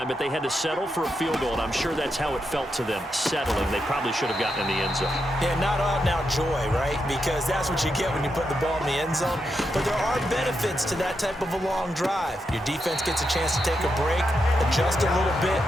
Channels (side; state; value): both; normal; correlation 0.84